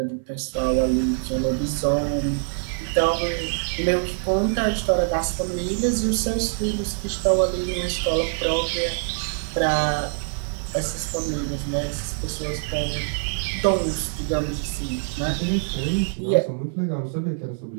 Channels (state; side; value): silent; left; digital silence